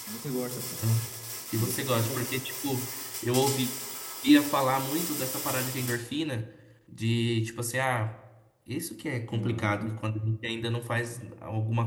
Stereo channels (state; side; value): identical; both; correlation 1.00